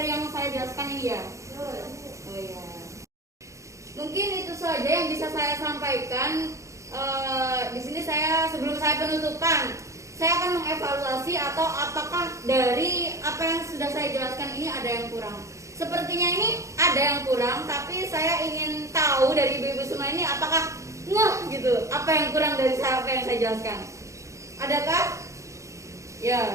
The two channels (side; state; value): left; late; 0.15 ms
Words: yang saya jelaskan ini ya? Oh iya. Mungkin itu saja yang bisa saya sampaikan. Di sini sebelum saya penutupan, saya akan mengevaluasi atau apakah dari apa yang sudah saya jelaskan ini ada yang kurang. Sepertinya ini ada yang kurang, tapi saya ingin tahu dari ibu-ibu semua ini apakah gitu apa yang kurang dari apa yang saya jelaskan. Adakah? Ya,